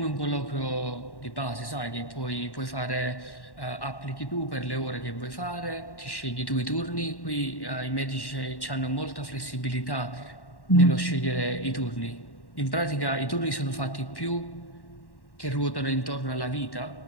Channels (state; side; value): late; right; 1.1 ms